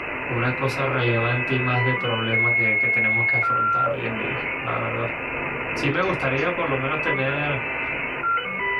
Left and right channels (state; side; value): identical; both; correlation 1.00